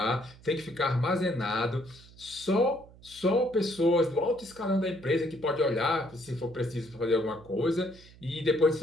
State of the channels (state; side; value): noise; right; hum, 22 dB below the sound